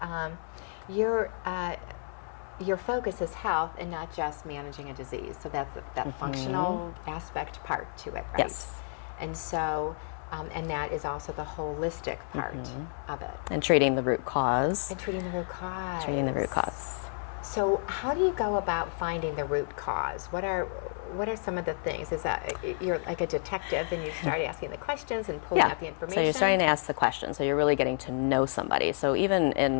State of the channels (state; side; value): silent; right; 57 dB below the other